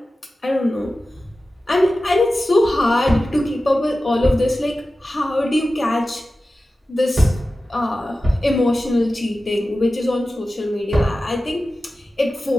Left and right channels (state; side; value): normal; both; correlation 0.94